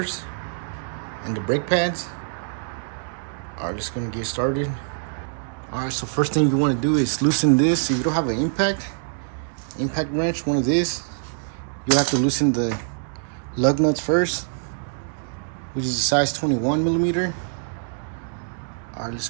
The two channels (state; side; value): silent; left; digital silence